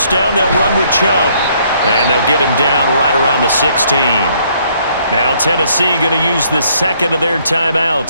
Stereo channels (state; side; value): inverted; both; correlation -0.66